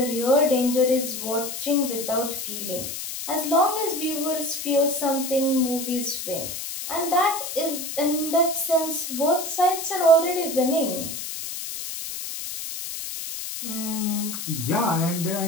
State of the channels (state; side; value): noise; left; hiss, 6 dB below the sound